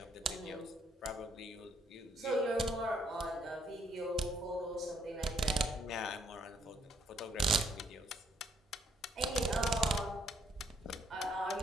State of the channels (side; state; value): both; normal; correlation 0.70